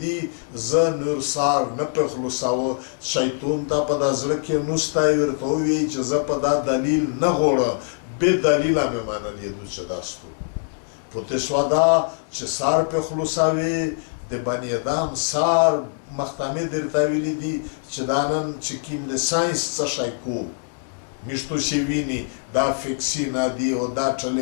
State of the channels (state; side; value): silent; right; 63 dB below the other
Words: دي زه نور سار نه په خلاصاوه شیطان ته په دا زړه کې نستی ورته ووایي چې زه په دا دلیل نه غواړم بې دلیله مې منلېدو چې دا ستو پوته شوه دا چې سار په خلاصوي د بني ادم سار مختمه درته ویلي دي چې دا نن چې کوم د ساینس څه شی کو میشتو شي ویني دا فکسي نه دي او دا